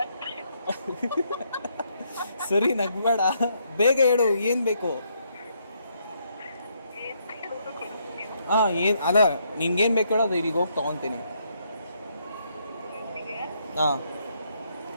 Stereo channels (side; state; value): both; inverted; correlation -0.74